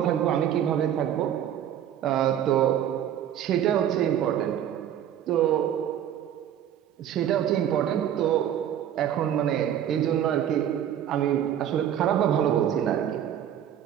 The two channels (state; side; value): quieter; left; 10.3 dB